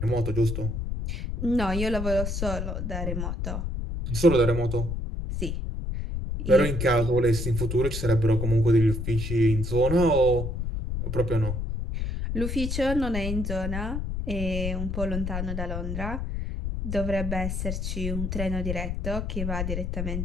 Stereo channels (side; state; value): left; noise; rumble, 3 dB below the sound